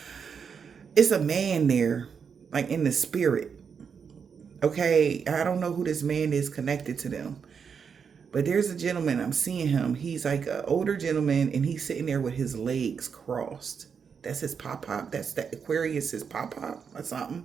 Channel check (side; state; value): left; quieter; 6.5 dB